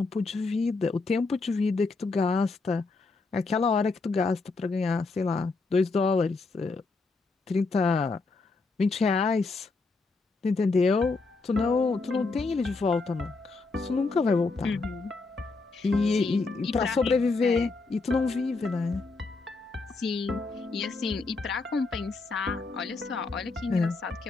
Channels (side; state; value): right; quieter; 3.8 dB